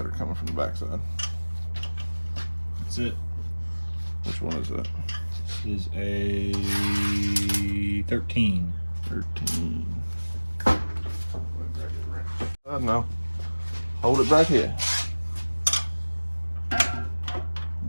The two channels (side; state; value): both; inverted; correlation -1.00